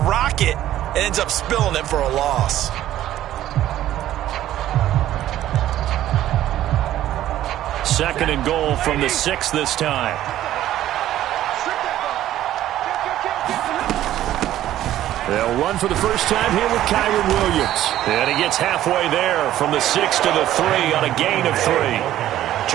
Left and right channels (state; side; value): quieter; left; 13.0 dB